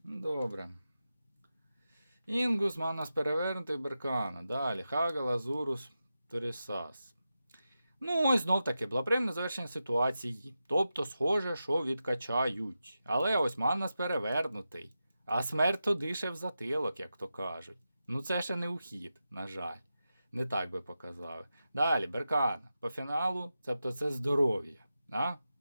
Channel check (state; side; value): inverted; both; correlation -0.90